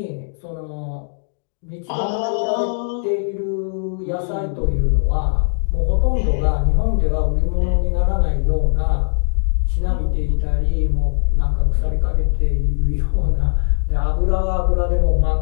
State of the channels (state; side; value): silent; right; digital silence